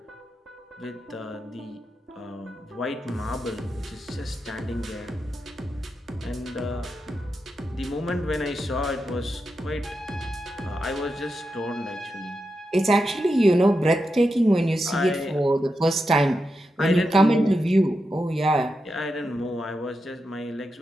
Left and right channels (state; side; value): normal; both; correlation 0.87